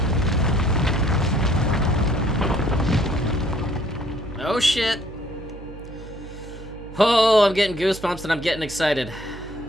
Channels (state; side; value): noise; right; hum, 15 dB below the sound